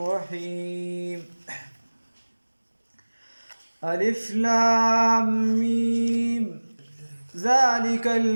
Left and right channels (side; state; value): both; inverted; correlation -1.00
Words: ألف لام ميم ذلك